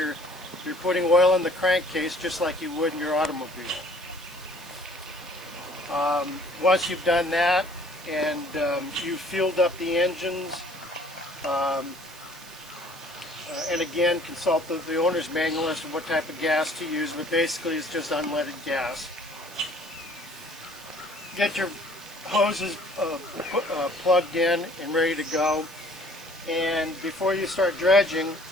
You're putting oil in the crankcase just like you would in your automobile. Once you've done that and you've fueled up the engines, and again, consult the owner's manual as to what type of gas to use, but basically it's just unleaded gas. Get your hoses plugged in and ready to go, and before you start dredging,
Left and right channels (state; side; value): noise; right; hiss, 19 dB below the sound